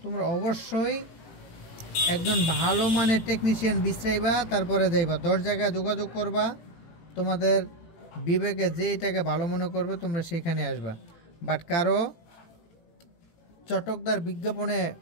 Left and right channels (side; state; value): right; late; 18 ms